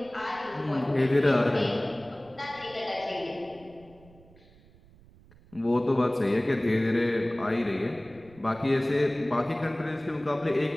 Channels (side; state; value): right; noise; rumble, 26 dB below the sound